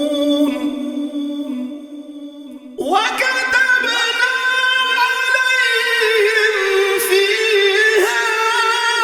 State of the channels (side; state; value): both; identical; correlation 1.00